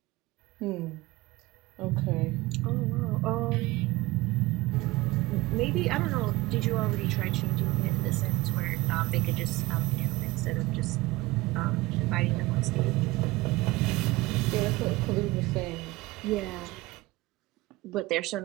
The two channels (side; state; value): left; quieter; 20.2 dB